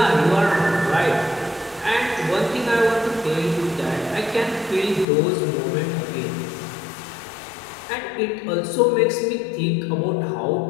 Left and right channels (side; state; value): right; drops out; at 5.1 s